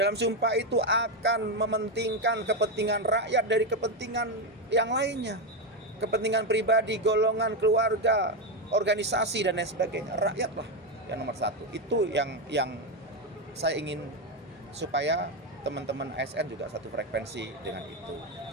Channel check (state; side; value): normal; both; correlation 0.09